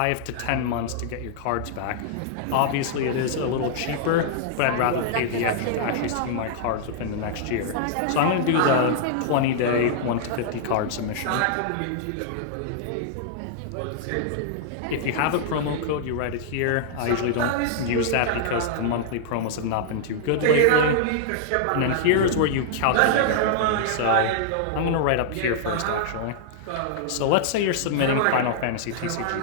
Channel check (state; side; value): different; both; correlation -0.01